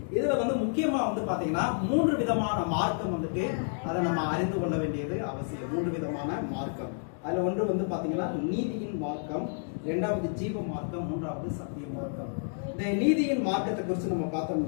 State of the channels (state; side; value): silent; right; digital silence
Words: இதுல முக்கியமா பாத்தீங்கன்னா 3 விதமான மார்க்கம் அதை நம்ம அறிந்து கொள்ள வேண்டியது அவசியம். 3 விதமான மார்க்கம். அதுல ஒன்று பாத்தீங்கன்னா நீதியின் மார்க்கம், 2வது ஜீவ மார்க்கம், 3வது சத்திய மார்க்கம். இந்த நீதியின் மார்க்கத்தை குறித்து நம்ம